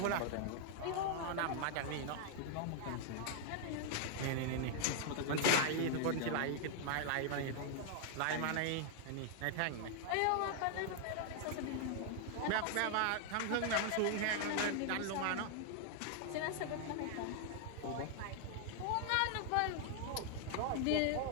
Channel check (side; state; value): both; different; correlation 0.00